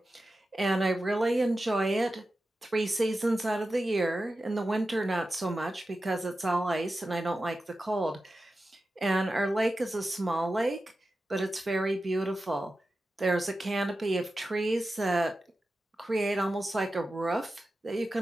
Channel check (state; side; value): normal; both; correlation 0.93